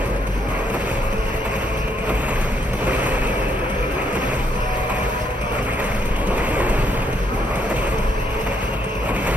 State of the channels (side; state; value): both; normal; correlation 0.73